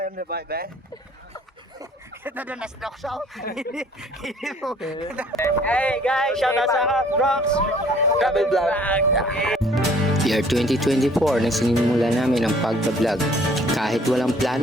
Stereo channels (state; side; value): normal; both; correlation 0.57